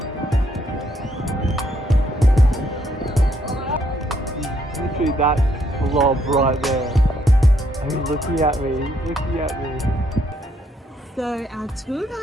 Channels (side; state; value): both; normal; correlation 0.71